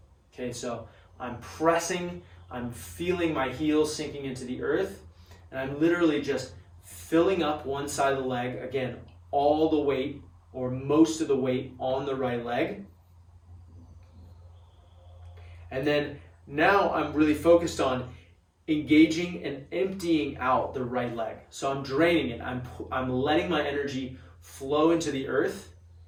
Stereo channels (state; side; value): identical; both; correlation 1.00